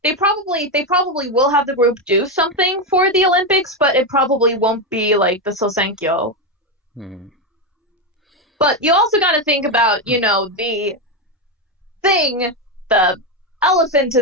They probably will have the group do something for the Olympics, but it probably won't be like the Sousenkyo. But you also got to think about, you know, the elephant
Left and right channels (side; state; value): both; normal; correlation 0.09